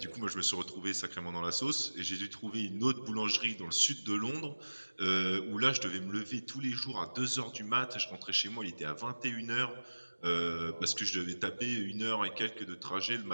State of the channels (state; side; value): inverted; both; correlation -1.00